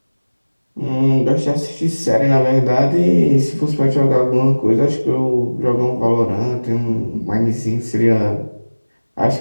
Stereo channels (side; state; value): both; inverted; correlation -1.00